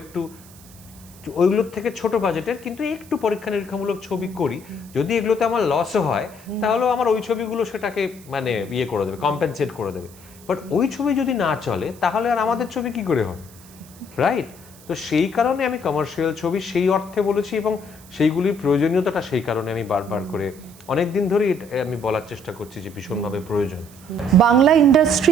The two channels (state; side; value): noise; right; hiss, 22 dB below the sound